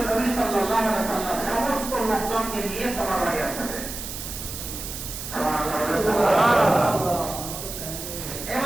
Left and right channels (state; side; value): noise; right; hiss, 8 dB below the sound